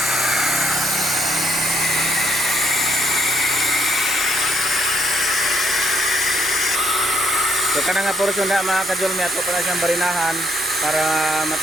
So kanang nga portion na mga kadulmi, ato pa na siyang barinahan para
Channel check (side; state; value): both; normal; correlation 0.71